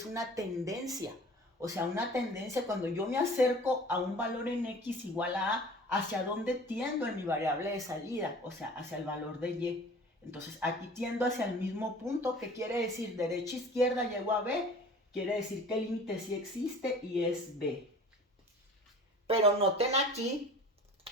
una tendencia. O sea, una tendencia cuando yo me acerco a un valor en X igual a A, ¿hacia dónde tiendo en mi variable de salida? O sea, hacia el valor de Y. Entonces, aquí tiendo hacia el mismo punto. ¿Qué quiere decir? Derecha, izquierda, llego a B. Quiere decir que el límite sí existe y es B. Pero noten aquí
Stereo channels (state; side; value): normal; both; correlation 0.44